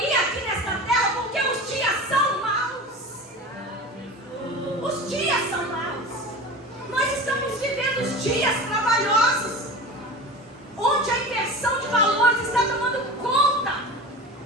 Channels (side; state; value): both; normal; correlation 0.32